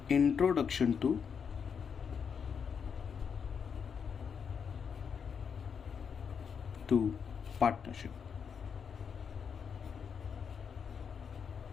introduction to partnership.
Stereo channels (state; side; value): quieter; right; 6.7 dB